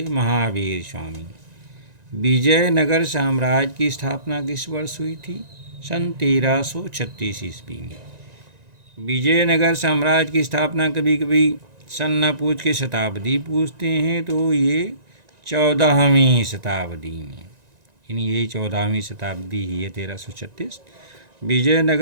महावीर स्वामी। विजयनगर साम्राज्य की स्थापना किस वर्ष हुई थी? सन 1336 ईस्वी में। विजयनगर साम्राज्य की स्थापना कभी कभी सन न पूछ के शताब्दी पूछते हैं, तो ये 14वीं शताब्दी में, यानी यही 14वीं शताब्दी ही है 1336।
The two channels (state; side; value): late; left; 1.9 ms